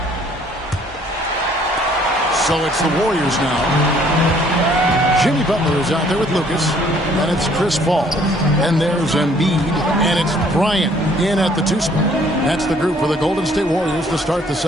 So it's the Warriors now. Jimmy Butler is out there with Lucas, and it's Chris Paul, and there's Embiid, and it's Bryant in at the 2 spot. That's the group for the Golden State Warriors to start the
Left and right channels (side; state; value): both; normal; correlation 0.61